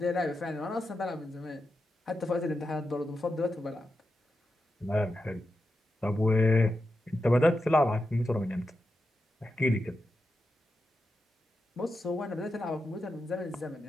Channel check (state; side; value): normal; both; correlation 0.88